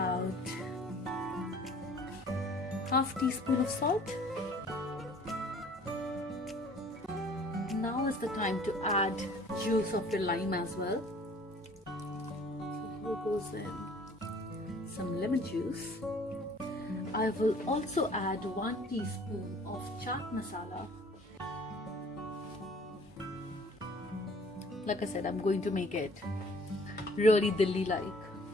half teaspoon of salt. Now is the time to add juice of your lime as well. So here goes in some lemon juice. I will also add 1 teaspoon of chaat masala. Like I said, I'm going to make it really Delhi-like.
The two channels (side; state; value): both; normal; correlation 0.53